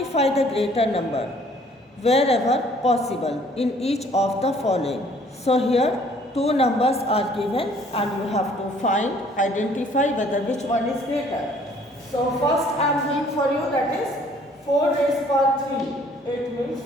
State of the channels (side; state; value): both; normal; correlation 0.58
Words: the greater number wherever possible in each of the following. So here two numbers are given and you have to find, identify whether which one is greater. So first I am doing for you, that is 4 raised power 3. It means